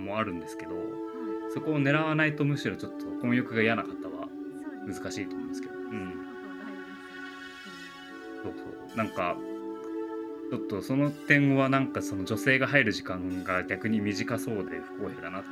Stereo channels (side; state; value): both; identical; correlation 1.00